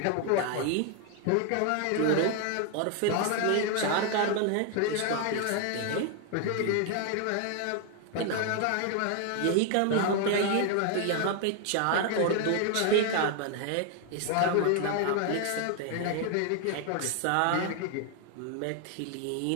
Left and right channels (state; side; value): different; both; correlation 0.00